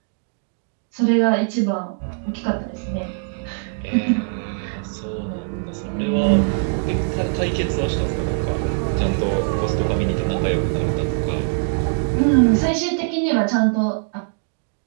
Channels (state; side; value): silent; left; digital silence